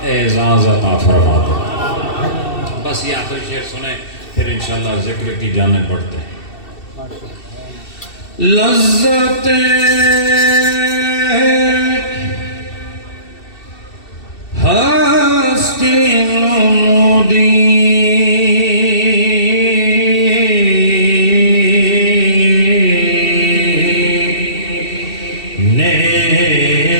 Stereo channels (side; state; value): right; late; 2.7 ms